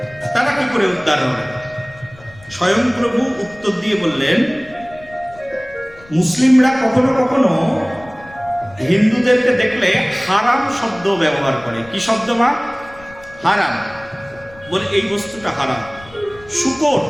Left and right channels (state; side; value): noise; left; rumble, 23 dB below the sound